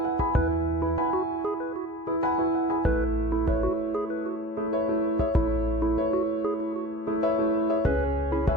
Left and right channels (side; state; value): both; normal; correlation 0.37